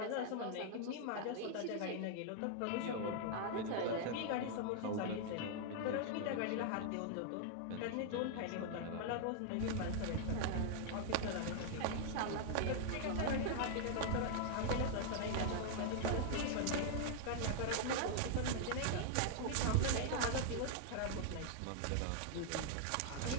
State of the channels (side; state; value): both; different; correlation 0.00